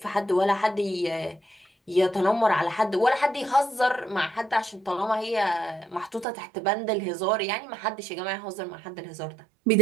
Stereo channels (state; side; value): drops out; left; at 6.2 s